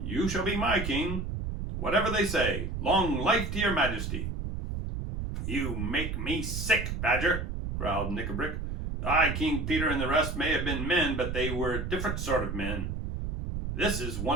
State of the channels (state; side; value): noise; right; rumble, 4 dB below the sound